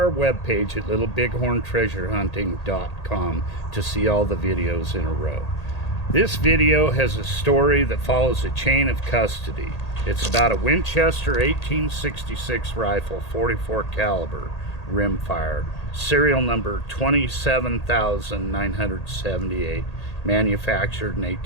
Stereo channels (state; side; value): late; right; 1.8 ms